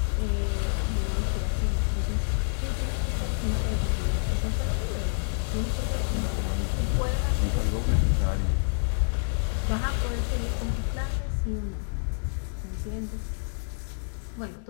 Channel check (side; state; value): right; silent; digital silence